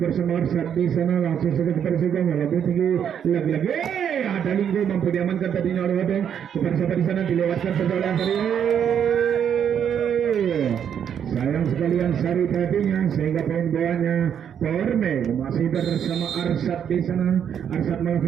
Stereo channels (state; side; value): quieter; left; 8.5 dB